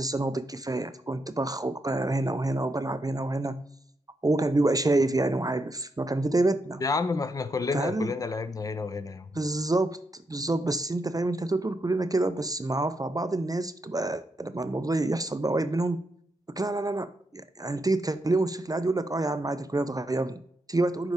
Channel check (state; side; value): normal; both; correlation 0.81